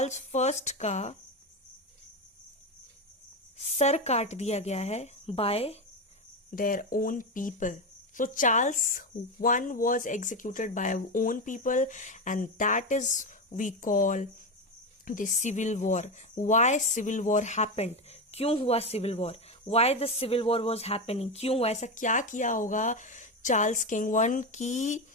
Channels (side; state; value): both; normal; correlation 0.15